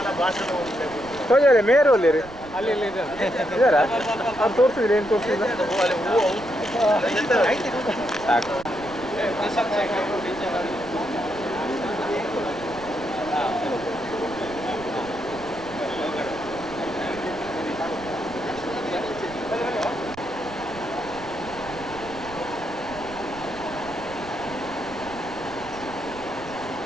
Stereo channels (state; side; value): noise; right; rumble, 17 dB below the sound